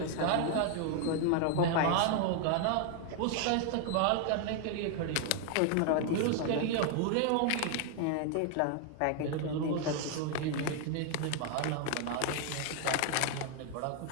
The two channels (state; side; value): different; both; correlation 0.00